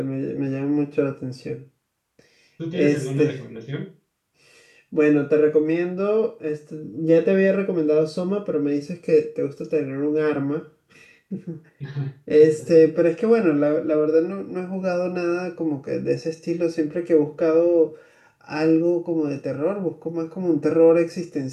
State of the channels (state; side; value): identical; both; correlation 1.00